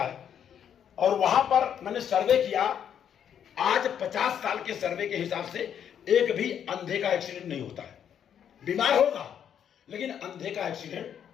और वहां पर मैंने सर्वे किया, आज 50 साल के सर्वे के हिसाब से एक भी अंधे का एक्सीडेंट नहीं होता है। बीमार होगा लेकिन अंधे का एक्सीडेंट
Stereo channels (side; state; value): right; quieter; 8.8 dB